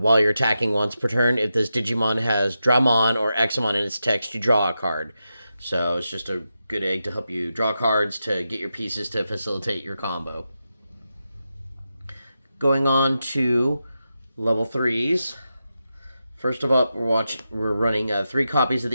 you're attacking once per turn, if this Digimon has Dramon or Examon in its text, you draw a card. So it's just a good egg to help you draw cards to get your pieces to facilitate your combo. Going on to level 3s. First of all, we're running 3 copies of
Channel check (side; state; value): both; inverted; correlation -0.89